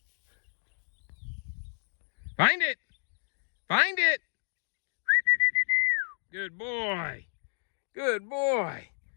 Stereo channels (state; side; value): silent; right; digital silence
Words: Find it. Find it. Good boy. Good boy.